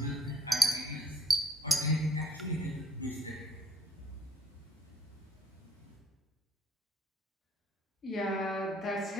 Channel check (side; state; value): both; normal; correlation 0.64